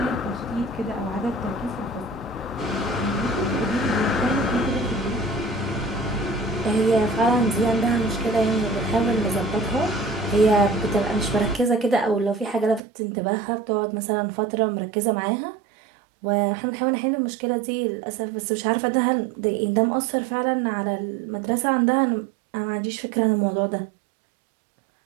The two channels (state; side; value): drops out; left; at 12.8 s